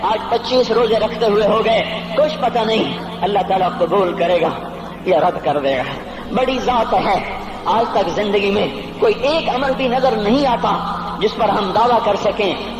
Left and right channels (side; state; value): both; identical; correlation 1.00